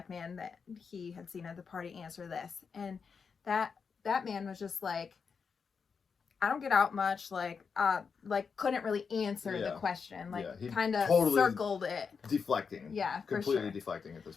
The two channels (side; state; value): right; quieter; 5.8 dB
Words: man that he had seen at the party answer this. And that man was just like, I don't get out much, like couldn't really answer the question, he kind of totally circled it. Deflecting. Yeah, completely deflecting at